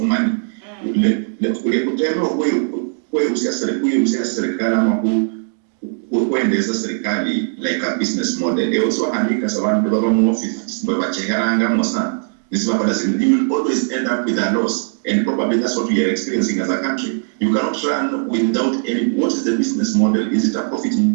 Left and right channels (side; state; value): left; silent; digital silence